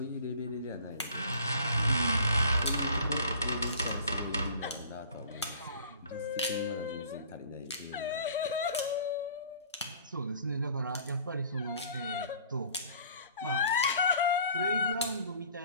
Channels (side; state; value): both; inverted; correlation -0.50